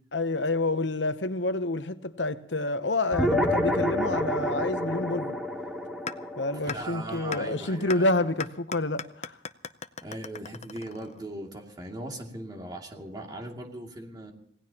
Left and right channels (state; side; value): normal; both; correlation 0.16